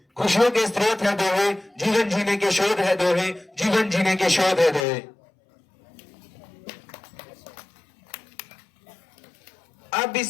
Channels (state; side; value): drops out; right; at 4.9 s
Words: खुशियों के स्रोत है दोहे, जीवन जीने के शोध है दोहे, जीवन जीने के शोध है दोहे। अब